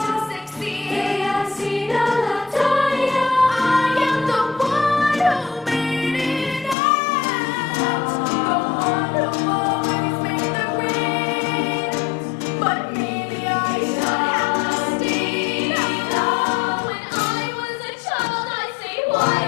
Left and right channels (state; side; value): drops out; right; at 6.8 s